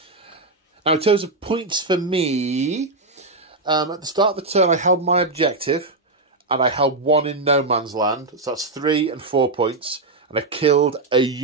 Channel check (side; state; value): left; quieter; 3.2 dB